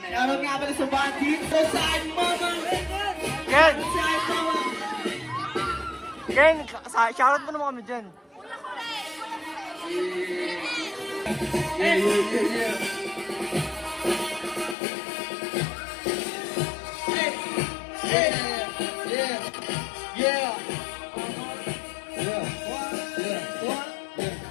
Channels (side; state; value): right; drops out; at 14.8 s